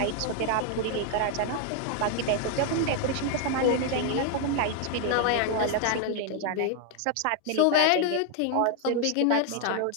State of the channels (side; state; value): both; different; correlation 0.00